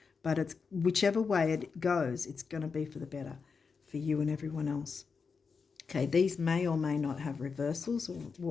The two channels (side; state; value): right; quieter; 5.3 dB